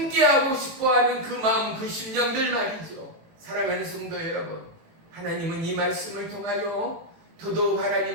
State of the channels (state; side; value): late; left; 18 ms